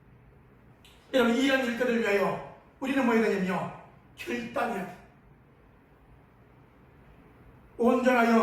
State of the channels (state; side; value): identical; both; correlation 1.00